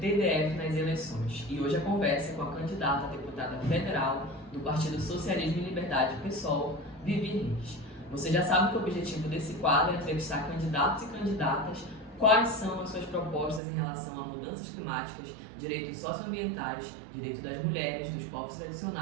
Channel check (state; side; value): drops out; left; at 13.6 s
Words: nas eleições e hoje a conversa é com a candidata a deputada federal do Partido Socialismo e Liberdade PSOL, Vivi Reis. Você já sabe que o objetivo desse quadro é entrevistar candidatos e candidatas, quais são as suas propostas em relação a mudanças climáticas, direitos socioambientais, direitos das mulheres, dos povos